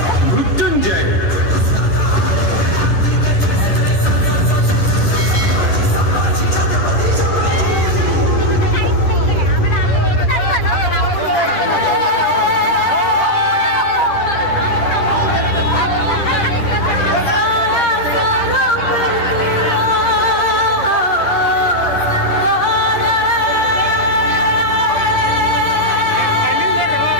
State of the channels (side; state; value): right; late; 10 ms